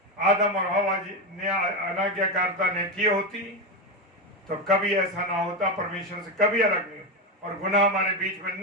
आदम और हवा जी ने अनाज्ञाकारिता ने की होती, तो कभी ऐसा ना होता, परमेश्वर से कभी अलग नहीं, और गुनाह हमारे बीच में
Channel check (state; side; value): normal; both; correlation 0.13